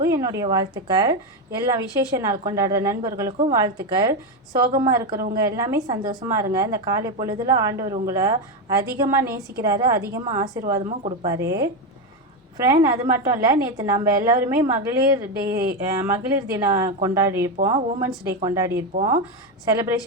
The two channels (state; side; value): normal; both; correlation 0.10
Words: என்னுடைய வாழ்த்துக்கள். எல்லா விசேஷ நாள் கொண்டாடுற நண்பர்களுக்கும் வாழ்த்துக்கள். சோகமாக இருக்கிறவங்க எல்லாமே சந்தோஷமாக இருங்க. இந்த காலை பொழுதில் ஆண்டவர் உங்களை அதிகமாக நேசிக்கிறாரு, அதிகமாக ஆசீர்வாதமும் கொடுப்பாரு. ஃப்ரெண்ட், அது மட்டும் இல்லை, நேற்று நம்ம எல்லோருமே மகளிர் தினம் கொண்டாடியிருப்போம், உமன்ஸ் டே கொண்டாடியிருப்போம்,